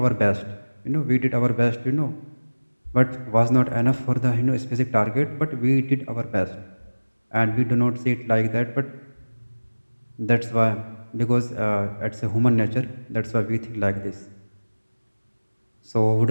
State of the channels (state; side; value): inverted; both; correlation -1.00